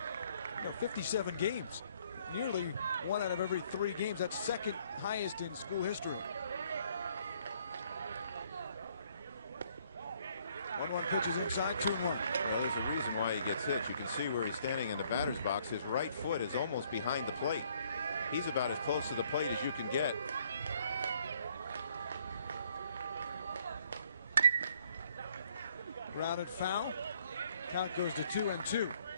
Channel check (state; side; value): inverted; both; correlation -0.65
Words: 57 games. Nearly 1 out of every 3 games. That's second highest in school history. 1-1 pitches inside, 2-1. Well, there's a reason why he gets hit. You can see where he's standing in the batter's box. His right foot is almost behind the plate. He's about as close to the plate as you can get. Grounded foul. Count goes to 2-2. Well,